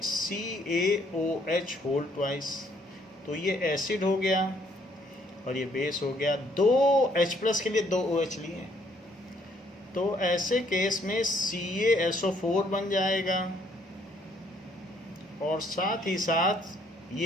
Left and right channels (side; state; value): both; normal; correlation 0.66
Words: CaOH होल ट्वाइस, तो ये एसिड हो गया और ये बेस हो गया। 2 H+ के लिए 2 OH लिए, तो ऐसे केस में CaSO4 बन जाएगा और साथ ही साथ